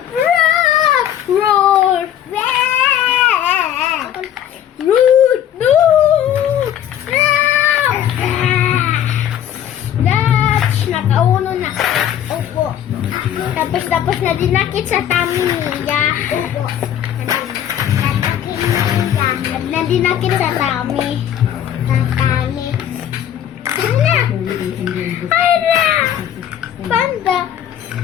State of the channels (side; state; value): right; quieter; 10.4 dB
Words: Roar! Root! No! Dutch! Nakauno na. Opo. Tapos na dinakit sa tummy niya. Opo. Na dinakit sa tummy. Ana! Panda!